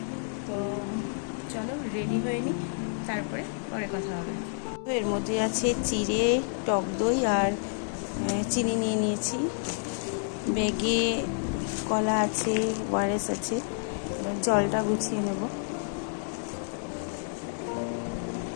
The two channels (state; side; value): silent; right; digital silence